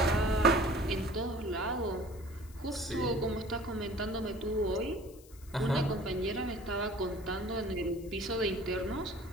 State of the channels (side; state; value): left; noise; hiss, 23 dB below the sound